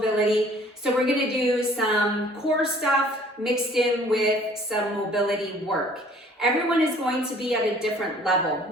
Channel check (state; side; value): normal; both; correlation 0.55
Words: So we're gonna do some core stuff mixed in with some mobility work. Everyone is going to be at a different level.